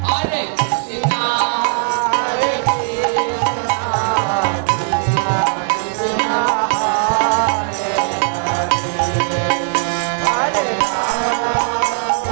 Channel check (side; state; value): left; silent; 59 dB below the other